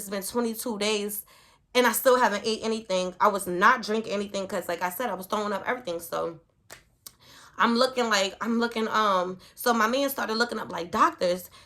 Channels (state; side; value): identical; both; correlation 1.00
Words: been 22 days and I still haven't ate anything. I was not drinking anything because, like I said, I was throwing up everything. So so my man started looking up like doctors.